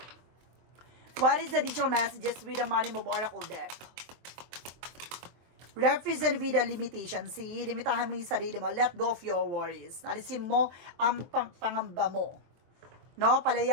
What is the additional messages with the Money Move Oracle deck? Represent with the limitation. See, limitahan mo yung sarili mo. Let go of your worries. Alisin mo ang pangamba mo. No,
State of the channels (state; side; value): late; left; 23 ms